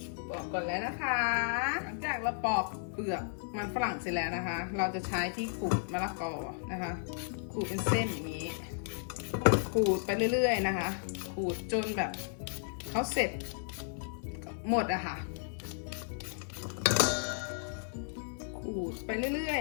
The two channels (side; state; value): right; silent; digital silence